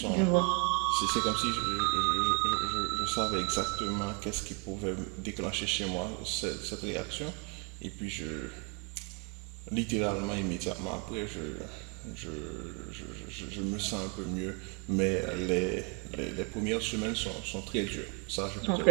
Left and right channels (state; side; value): quieter; left; 33.1 dB